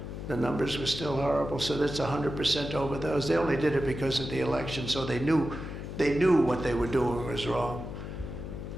The numbers were still horrible, so that's 100% over those. They only did it because of the election, so they knew what they were doing was wrong.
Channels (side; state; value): left; noise; hum, 8 dB below the sound